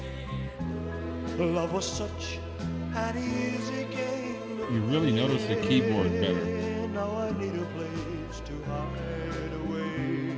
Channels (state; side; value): identical; both; correlation 1.00